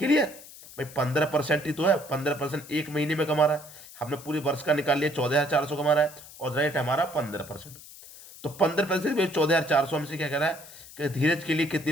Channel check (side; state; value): left; noise; hiss, 18 dB below the sound